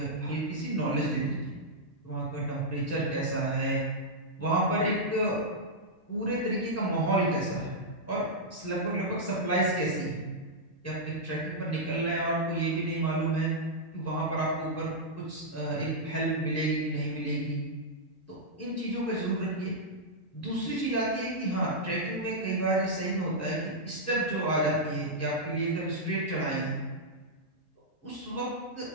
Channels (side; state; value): both; normal; correlation -0.08